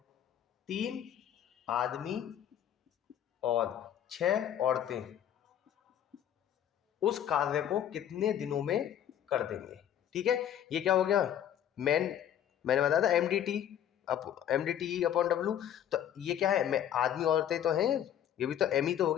3 आदमी और 6 औरतें उस कार्य को कितने दिनों में कर देंगे। ठीक है, ये क्या हो गया मैंने बताया था MDT अपॉन W। तो ये क्या है, मैं आदमी औरतें तो हैं, ये भी तो M ही तो हो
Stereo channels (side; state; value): right; quieter; 10.3 dB